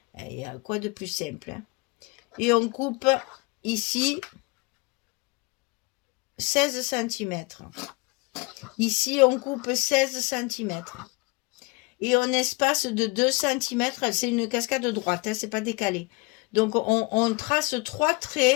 Il y a quoi de plus simple, hein? Et on coupe ici 16 cm. Ici, on coupe 16 cm. Et on espace de 2 cm. C'est une cascade droite, hein, c'est pas décalé. Donc, on trace 3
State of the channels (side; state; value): right; quieter; 26.6 dB